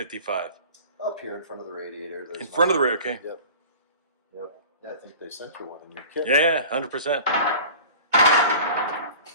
up here in front of the radiator. There's In front of the radio, okay. Yep. Yeah, I think they sent you one in your kit. Yeah, 100%.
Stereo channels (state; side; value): inverted; both; correlation -0.40